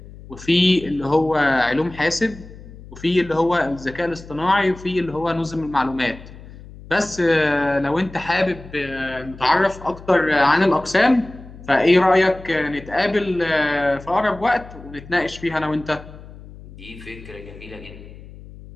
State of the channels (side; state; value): left; noise; hum, 17 dB below the sound